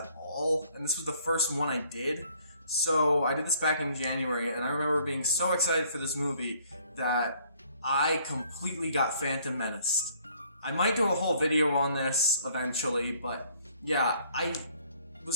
all, and this was the first one I did. So I did this back in January, and I remember being so excited for this movie that I completely got Phantom Menaced. I might do a whole video on this eventually, but yeah, I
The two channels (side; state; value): both; inverted; correlation -0.61